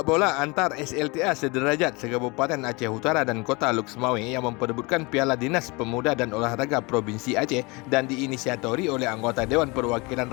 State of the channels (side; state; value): right; quieter; 26.5 dB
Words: bola antar SLTA sederajat se-Kabupaten Aceh Utara dan Kota Luk Semawe yang memperebutkan Piala Dinas Pemuda dan Olahraga Provinsi Aceh dan diinisiatori oleh anggota Dewan Perwakilan